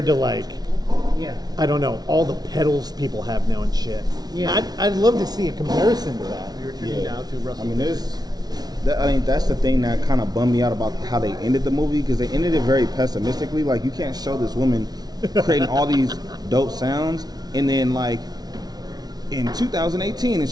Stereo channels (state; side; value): late; left; 0.19 ms